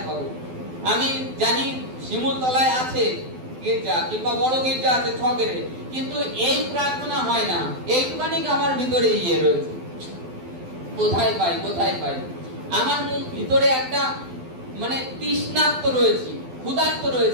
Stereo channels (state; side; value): late; left; 12 ms